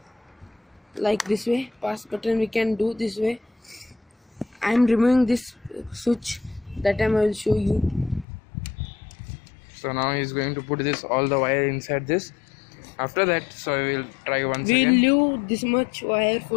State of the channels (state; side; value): drops out; right; at 8.2 s